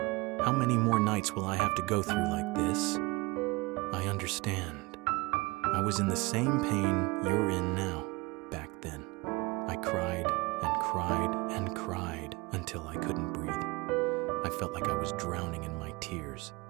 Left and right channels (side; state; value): left; quieter; 23.7 dB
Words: How many more nights will I have to go through like this? I understand. I was in the same pain you're in now, back then. I cried and cried and cried until I couldn't breathe. I felt like I was drowning in my tears.